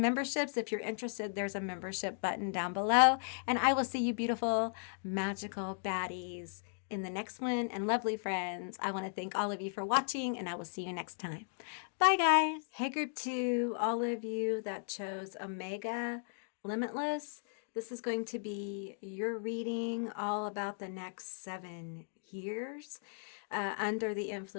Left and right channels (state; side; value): silent; right; digital silence